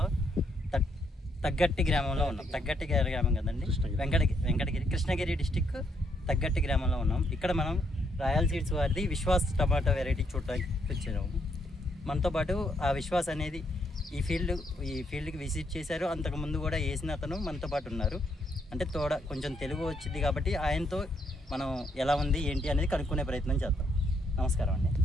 తగ్గట్టి గ్రామంలో ఉన్నాం. తగ్గట్టి గ్రామం కదండి, వెంకటగిరి కృష్ణగిరి డిస్టిక్ తగ్గట్టి గ్రామంలో ఉన్నాం. ఇక్కడ మనం రాయల్ సీడ్స్ వారిది విశ్వాస్ టమాటా వెరైటీ చూడడానికి వచ్చాము. మనతో పాటు ఆ విశ్వాస్ అనేది ఈ ఫీల్డ్కి విజిట్ చేశారు. అంతకుముందు కూడా వేసిన అతను మనతో పాటు ఉన్నారు. అంటే కొంచెం తెలుగు వచ్చింది కాబట్టి ఆయనతో మనం ఎలా ఉంది ఏంటి అనేది కనుక్కునే ప్రయత్నం చేద్దాం. నమస్కారం అండి.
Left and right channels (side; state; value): both; normal; correlation 0.74